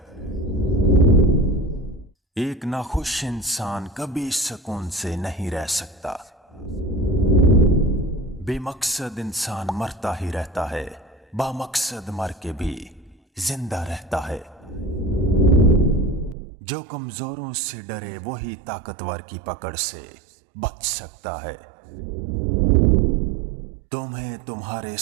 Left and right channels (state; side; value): drops out; left; at 16.4 s